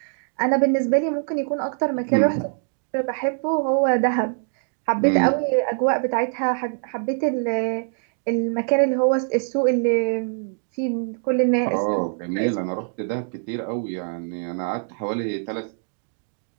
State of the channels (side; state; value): left; silent; digital silence